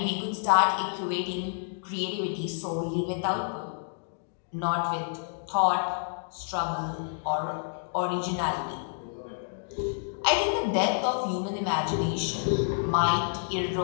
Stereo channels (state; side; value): silent; right; digital silence